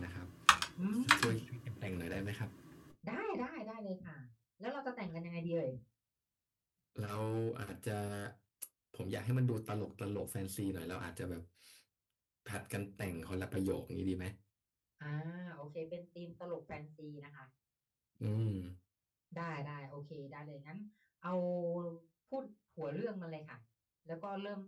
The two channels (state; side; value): identical; both; correlation 1.00